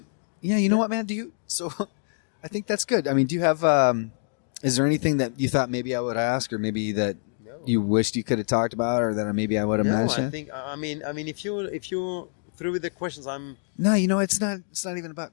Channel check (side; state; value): right; silent; 61 dB below the other